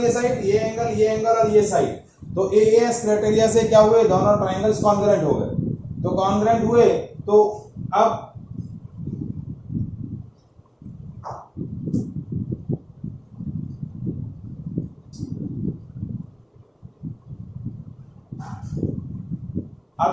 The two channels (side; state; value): both; identical; correlation 1.00